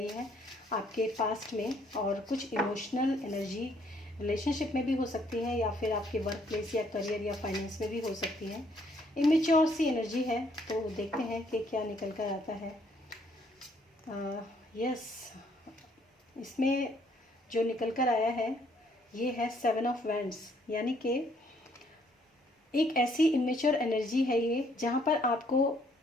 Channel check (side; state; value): both; normal; correlation 0.66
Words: है आपके पास्ट में, और कुछ इमोशनल एनर्जी रिलेशनशिप में भी हो सकती है, या फिर आपके वर्क प्लेस या करियर या फाइनेंस में भी हो सकती है। इमेच्योर सी एनर्जी है, तो देखते हैं कि क्या निकल कर आता है। यस, इसमें जो निकल कर आया है ये है 7 ऑफ वैंड्स, यानी कि एक ऐसी इमेच्योर एनर्जी है ये, जहाँ पर आपको